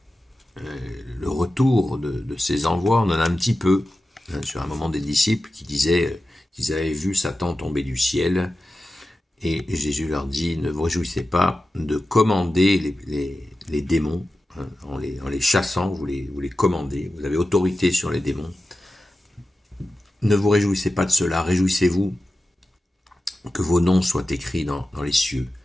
Le retour de ces envois, on en a un petit peu. Sur un moment des disciples qui disaient qu'ils avaient vu Satan tomber du ciel. Et Jésus leur dit, ne vous réjouissez pas de commander les démons. En les chassant, vous les commandez. Vous avez autorité sur les démons. Ne vous réjouissez pas de cela. Réjouissez-vous que vos noms soient écrits dans les cieux,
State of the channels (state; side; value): normal; both; correlation 0.93